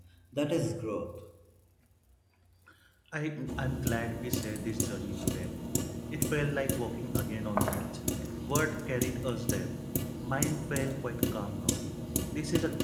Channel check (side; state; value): both; identical; correlation 1.00